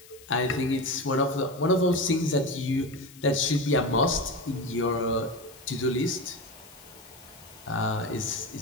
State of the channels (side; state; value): left; noise; hiss, 22 dB below the sound